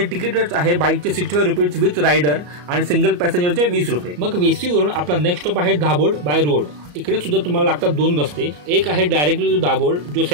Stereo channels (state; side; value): late; left; 34 ms